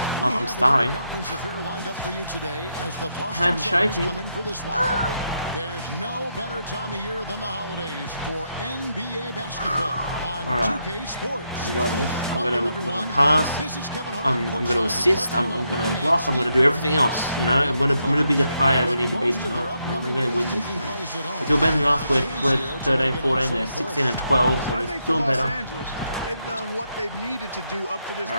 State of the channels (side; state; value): both; inverted; correlation -0.81